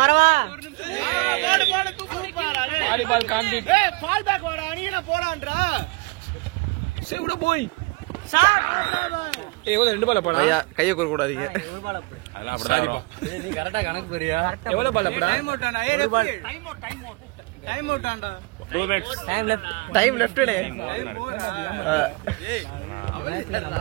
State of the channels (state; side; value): quieter; left; 26.5 dB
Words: வரவா? வாலிபால் காண்டி. பால் பேக் வாடா, நீங்க போறான்றா. சேவுடா போய். ஏய் எவ்வளவு 2 பால் போடா. ஐயா கையை கூற கூடாதீங்க. அதெல்லாம் அப்படிதான் வரும். நீ கரெக்டா கணக்கு போறியா? எவ்வளவு பால் போடா? டைம் அவுட்டாண்டா. 2 மினிட்ஸ். டைம் லெஃப்ட்னே.